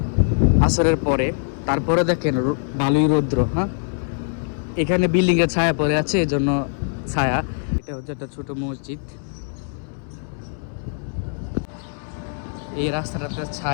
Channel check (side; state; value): right; silent; 64 dB below the other